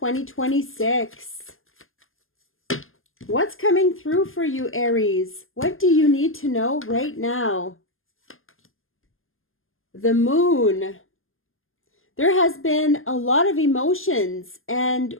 What's coming through for you, Aries? What do you need to know right now? The moon. There has been a lot of emotions. And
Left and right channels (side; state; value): right; late; 0.59 ms